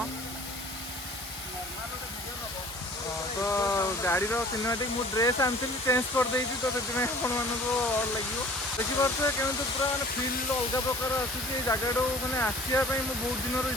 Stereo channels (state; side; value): normal; both; correlation 0.49